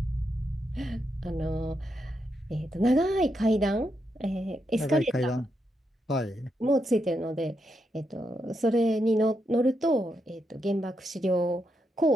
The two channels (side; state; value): both; normal; correlation 0.82